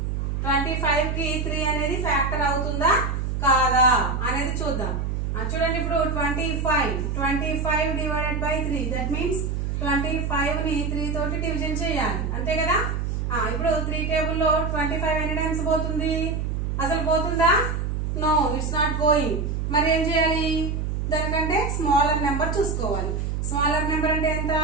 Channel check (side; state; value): right; noise; hum, 1 dB below the sound